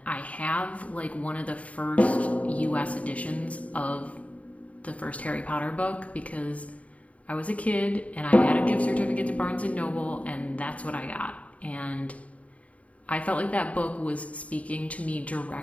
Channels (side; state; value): right; late; 0.067 ms